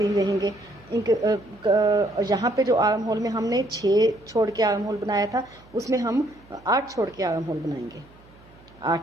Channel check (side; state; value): right; noise; hum, 26 dB below the sound